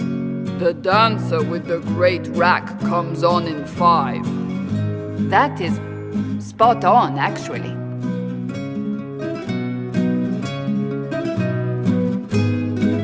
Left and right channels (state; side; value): identical; both; correlation 1.00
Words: the dancer with the great rack comes on in 5. That is spot on, actually.